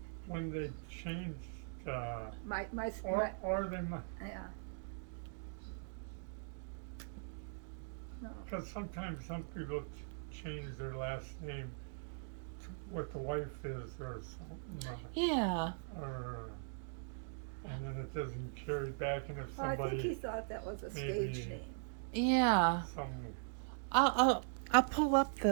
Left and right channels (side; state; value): left; silent; digital silence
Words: when they changed, my or they might, yeah. No, because sometimes some people change their last name to what the wife is or something, Yeah. and then it doesn't carry back, and if well, I think he somebody, thought that was a stage maybe- name. Yeah. some I'll pull up